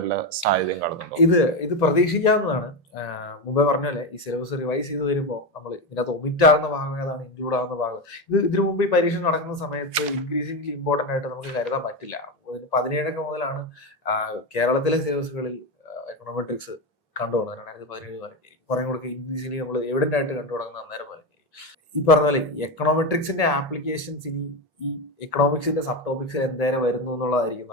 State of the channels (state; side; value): normal; both; correlation 0.14